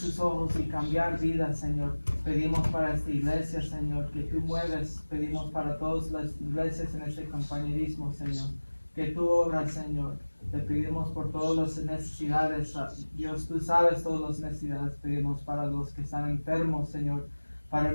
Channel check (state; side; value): inverted; both; correlation -1.00